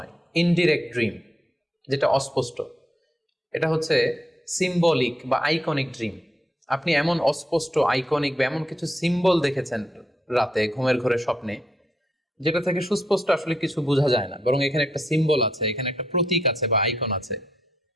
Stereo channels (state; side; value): normal; both; correlation 0.78